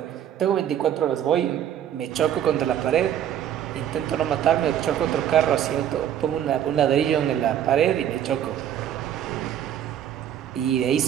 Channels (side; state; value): left; quieter; 10.3 dB